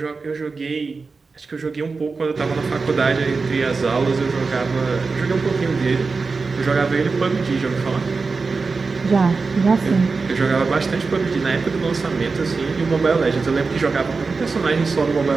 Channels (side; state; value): left; quieter; 4.3 dB